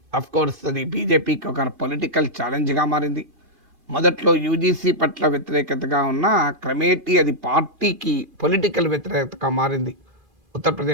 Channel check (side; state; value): left; late; 2.5 ms